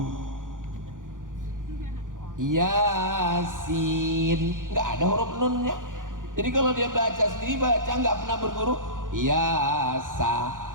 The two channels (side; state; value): left; late; 0.89 ms